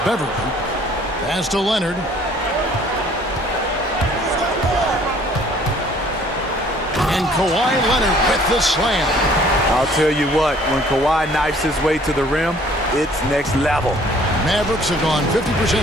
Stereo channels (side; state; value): both; normal; correlation 0.56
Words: Pass to Leonard. And Kawhi Leonard with the slam. I'll tell you what, when Kawhi knifes his way to the rim, it's next level. Mavericks have gone 50%